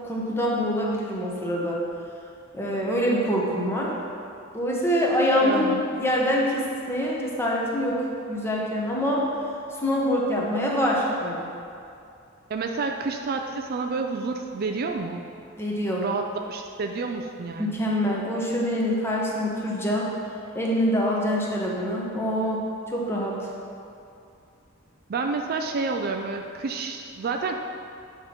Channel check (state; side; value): normal; both; correlation 0.36